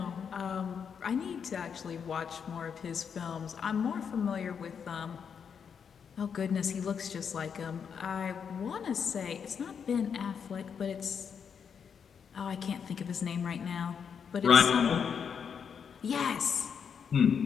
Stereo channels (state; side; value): quieter; right; 7.0 dB